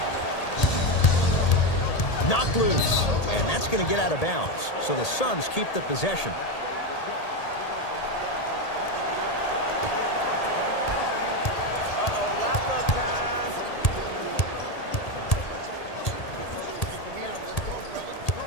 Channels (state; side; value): late; right; 1.8 ms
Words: 4-2. Knocked loose, and that's going to get out of bounds. So the Suns keep the possession.